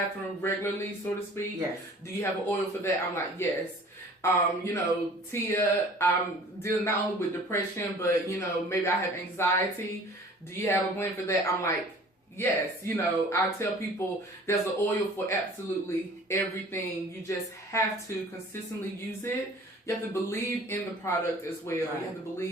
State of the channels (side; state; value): both; normal; correlation 0.48